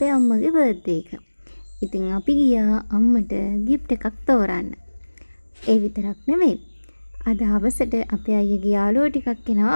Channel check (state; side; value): inverted; both; correlation -1.00